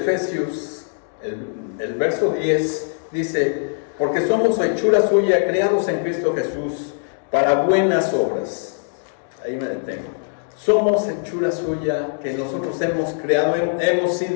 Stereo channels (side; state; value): right; silent; digital silence